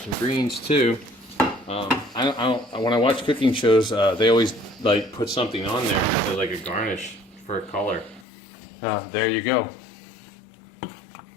greens too. When I watch cooking shows, they always like put something on there, like a garnish for a color. There you go.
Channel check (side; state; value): right; drops out; at 8.2 s